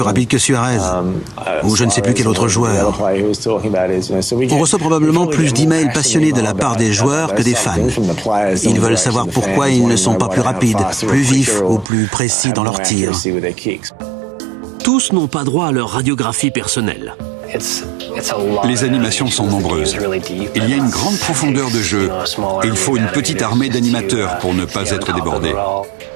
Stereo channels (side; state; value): left; drops out; at 11.9 s